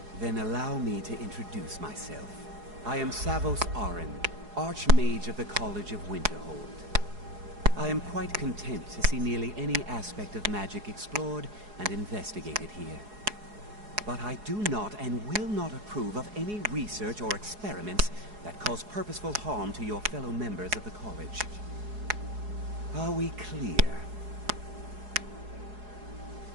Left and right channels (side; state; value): left; late; 4.8 ms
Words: Then allow me to introduce myself. I am Savos Arin, Archmage of the College of Winterhold. I am quite content to see nearly any aspect of magic explored and investigated here. But I do not and will not approve of any research or experiments that cause purposeful harm to your fellow members of the college. Are we clear?